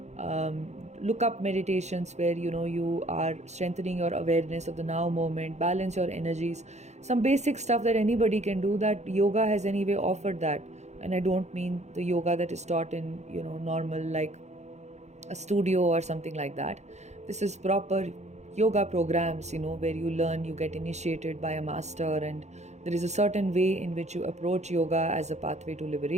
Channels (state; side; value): late; left; 0.33 ms